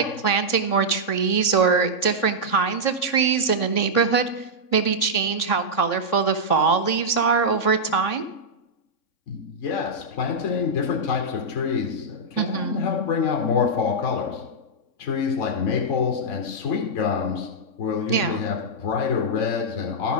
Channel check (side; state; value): right; late; 3.6 ms